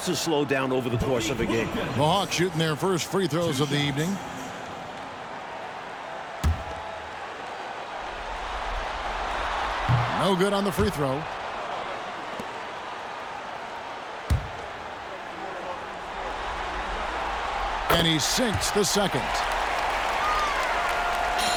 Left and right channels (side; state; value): both; identical; correlation 1.00